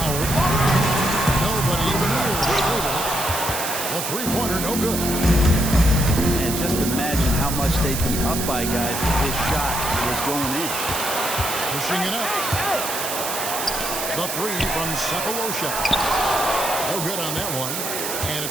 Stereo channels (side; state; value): right; noise; hiss, 4 dB below the sound